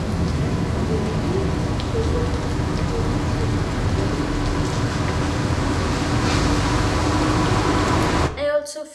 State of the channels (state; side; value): identical; both; correlation 1.00